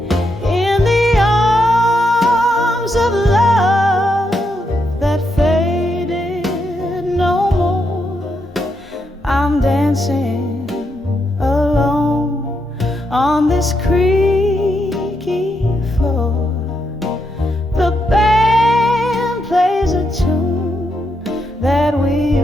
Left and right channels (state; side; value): normal; both; correlation 0.81